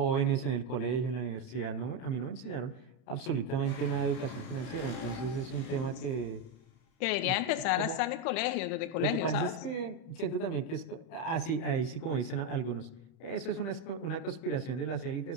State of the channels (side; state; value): right; late; 31 ms